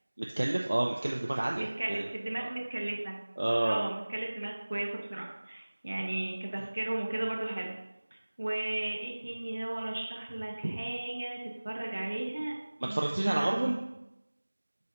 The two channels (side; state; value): both; inverted; correlation -1.00